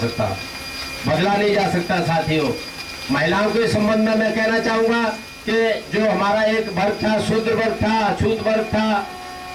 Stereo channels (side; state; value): both; identical; correlation 1.00